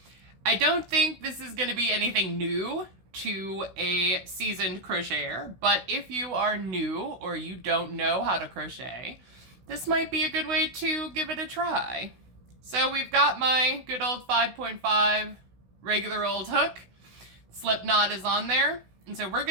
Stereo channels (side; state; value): left; late; 16 ms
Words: I don't think this is going to be anything new to a seasoned crocheter, but if you are new or you don't know how to crochet, this might be a good way to give it a try. So we've got my good old 5.5 regular old hook. Slip knot is on there, and so we're